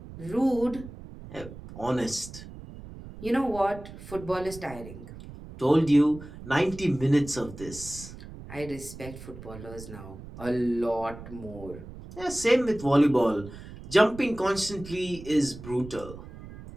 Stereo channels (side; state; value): right; noise; rumble, 14 dB below the sound